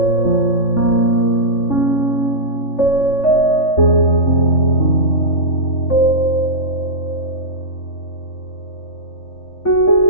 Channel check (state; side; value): late; right; 3.5 ms